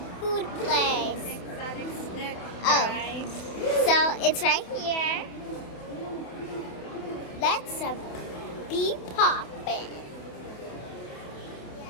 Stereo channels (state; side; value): late; right; 28 ms